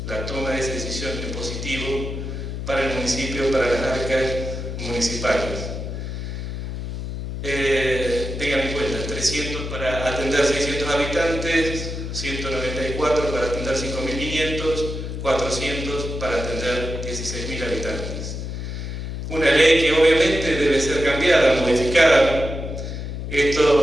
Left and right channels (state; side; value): noise; left; hum, 6 dB below the sound